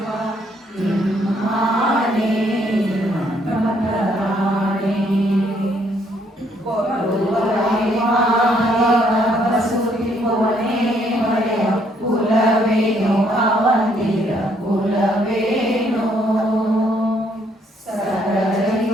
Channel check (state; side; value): normal; both; correlation 0.68